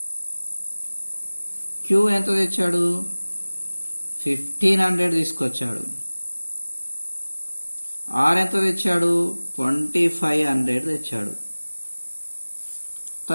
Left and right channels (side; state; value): both; inverted; correlation -1.00